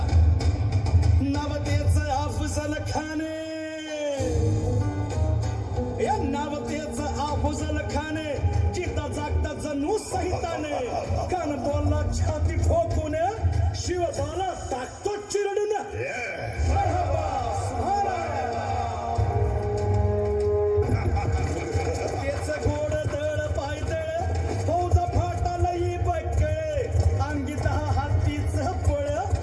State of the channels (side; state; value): both; identical; correlation 1.00